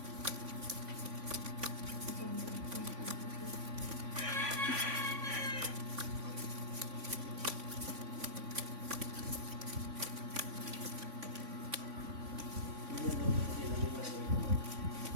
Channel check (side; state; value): left; late; 3.5 ms